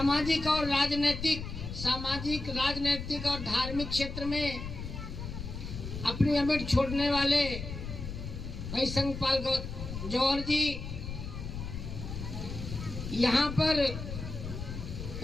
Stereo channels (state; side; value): noise; left; rumble, 7 dB below the sound